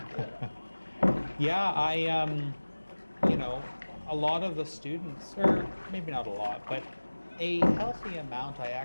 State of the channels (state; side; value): inverted; both; correlation -1.00